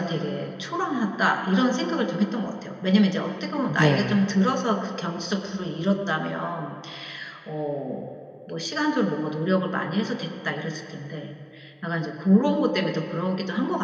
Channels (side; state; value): both; identical; correlation 1.00